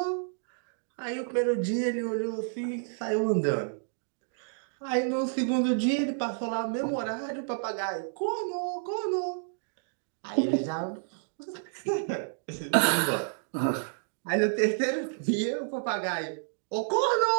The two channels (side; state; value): left; silent; digital silence